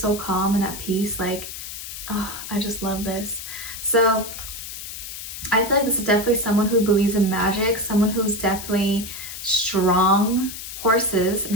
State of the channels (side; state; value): left; noise; hiss, 9 dB below the sound